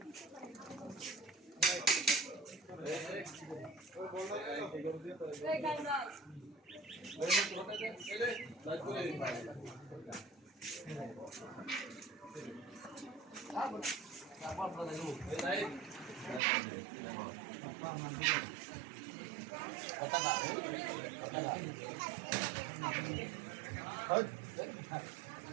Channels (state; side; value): drops out; left; at 16.4 s